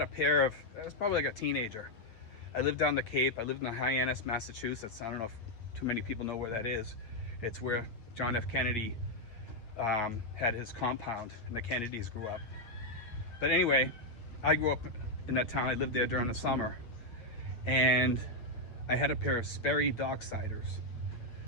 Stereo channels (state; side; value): late; right; 8.9 ms